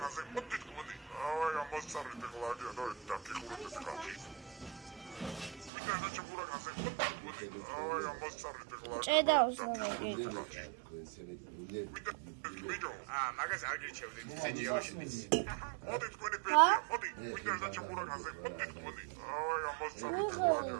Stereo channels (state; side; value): drops out; left; at 5.7 s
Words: მოდი თქვენი. აი ამოსarete xoladi და დაკიხურეთ ხაჭი. მინდა და ჩემურაკაზე, მოდი თქვენი. აი ამოსarete xoladi. ჭედა უსმენელი. მაგას არ გირჩევდით, სიჯი აბაშიც. მოდი თქვენი ბებია, მოდი. მინდა და ჩემურაკაზე, მოდი თქვენი. აი ამოსarete xoladi